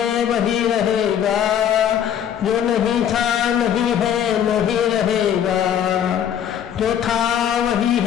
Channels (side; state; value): right; quieter; 9.4 dB